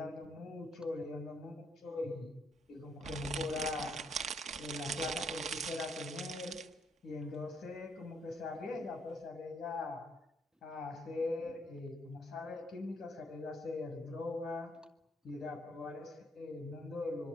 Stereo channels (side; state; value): both; normal; correlation 0.70